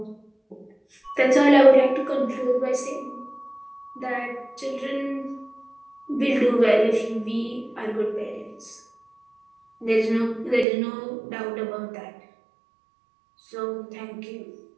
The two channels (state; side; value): drops out; left; at 10.7 s